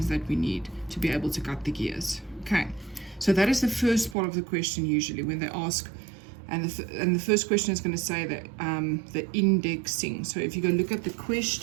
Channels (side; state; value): left; drops out; at 4.2 s